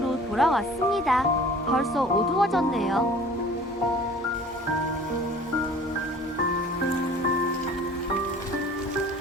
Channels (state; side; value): normal; both; correlation 0.47